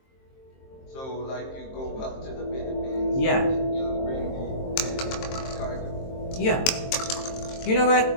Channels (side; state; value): right; late; 23 ms